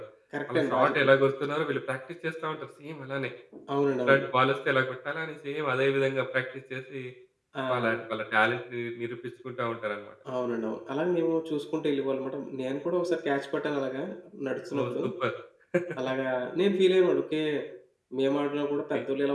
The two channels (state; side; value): identical; both; correlation 1.00